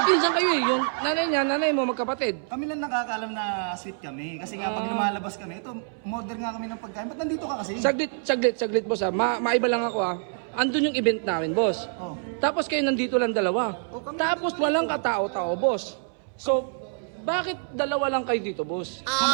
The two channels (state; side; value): silent; left; 61 dB below the other